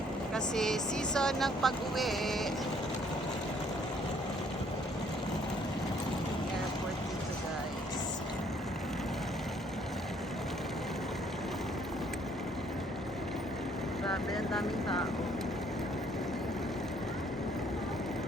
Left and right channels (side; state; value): both; normal; correlation 0.63